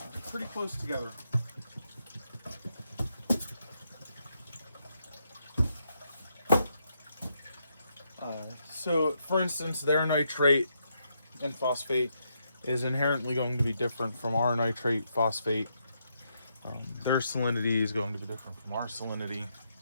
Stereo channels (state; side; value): inverted; both; correlation -0.79